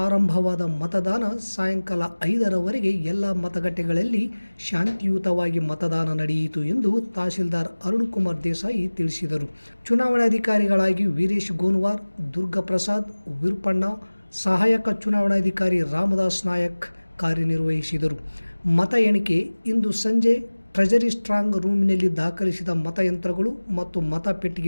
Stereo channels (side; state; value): both; inverted; correlation -1.00